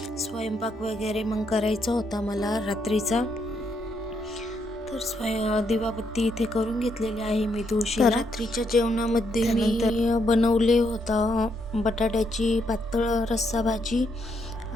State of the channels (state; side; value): normal; both; correlation 0.76